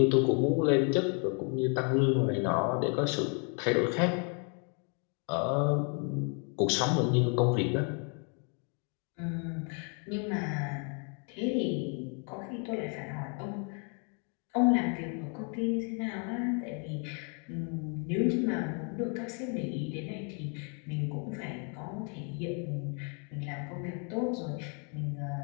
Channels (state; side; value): quieter; right; 39.1 dB